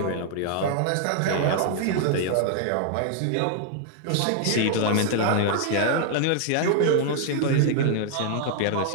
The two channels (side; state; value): both; different; correlation 0.00